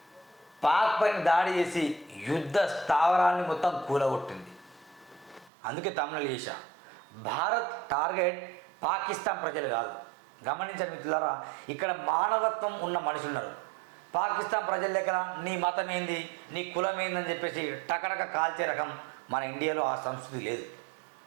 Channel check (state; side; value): drops out; left; at 5.5 s